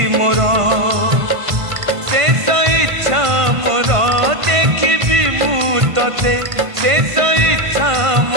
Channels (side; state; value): left; late; 1.5 ms